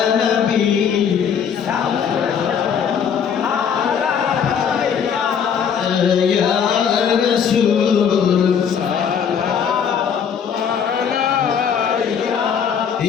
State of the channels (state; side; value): quieter; right; 7.4 dB